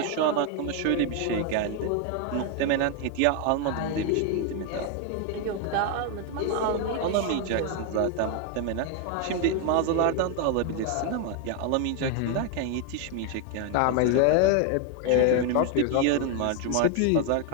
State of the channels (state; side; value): different; both; correlation 0.01